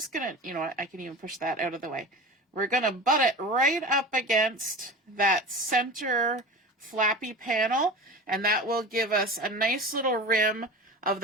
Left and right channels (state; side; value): normal; both; correlation 0.33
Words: going to, you know what, I can even push that out of the way. We're going to butt it right up against that center flappy panel, and that will give us a nice little rim of